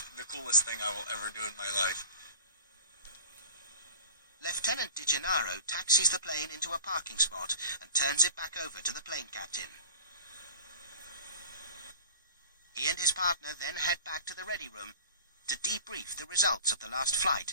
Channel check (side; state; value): both; inverted; correlation -0.41